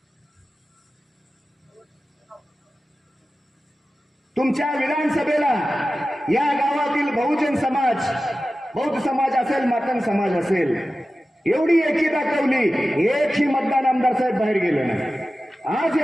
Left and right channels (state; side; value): normal; both; correlation 0.94